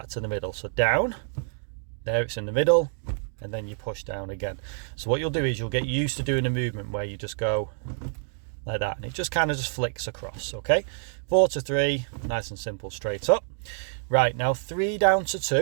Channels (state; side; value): silent; left; digital silence